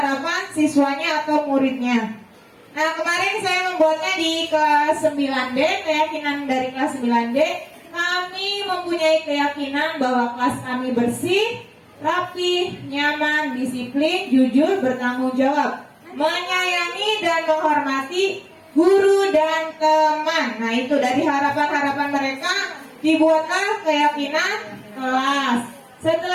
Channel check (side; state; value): both; identical; correlation 1.00